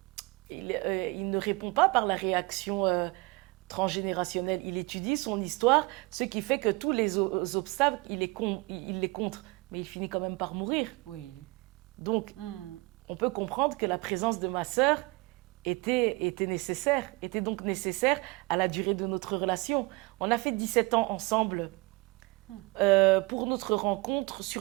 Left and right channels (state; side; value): quieter; left; 25.0 dB